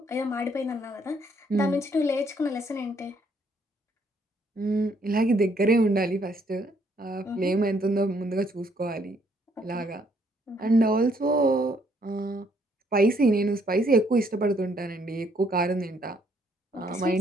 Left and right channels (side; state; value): both; normal; correlation 0.68